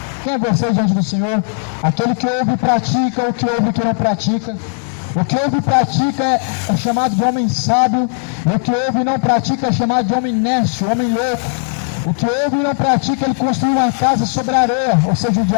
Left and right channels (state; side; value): silent; right; digital silence